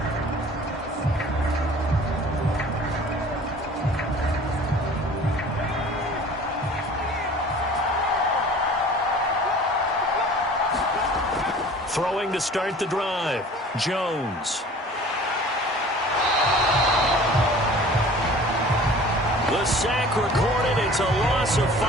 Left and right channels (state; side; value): normal; both; correlation 0.45